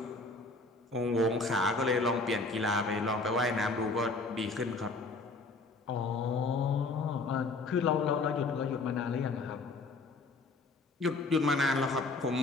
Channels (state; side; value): quieter; right; 3.4 dB